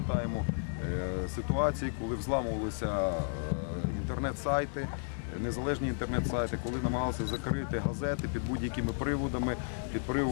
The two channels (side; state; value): right; silent; digital silence